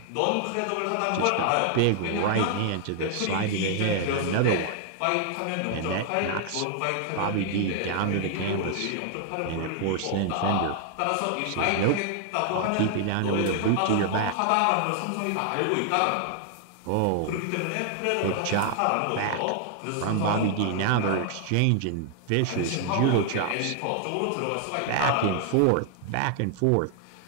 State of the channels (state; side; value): different; both; correlation 0.00